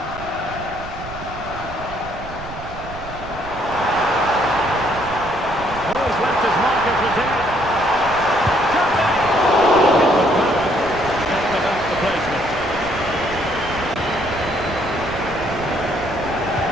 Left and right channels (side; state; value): right; noise; rumble, 13 dB below the sound